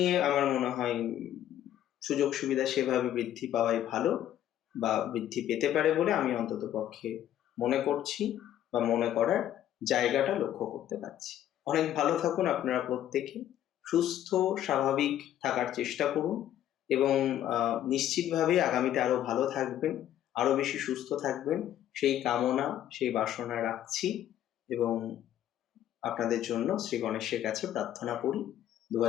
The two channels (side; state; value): right; quieter; 11.7 dB